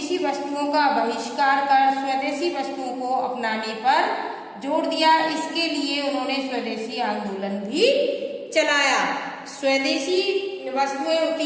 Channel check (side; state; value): both; identical; correlation 1.00